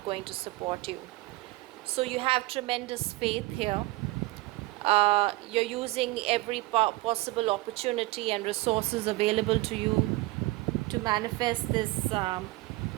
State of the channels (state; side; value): quieter; left; 20.8 dB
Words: going to support you. So you have tremendous faith here. You're using every possible opportunity and resources available to you to manifest this